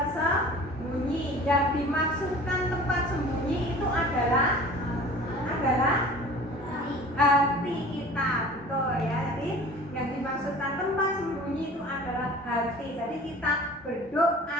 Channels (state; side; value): normal; both; correlation 0.43